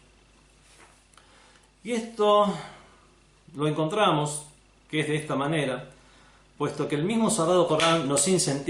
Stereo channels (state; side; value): identical; both; correlation 1.00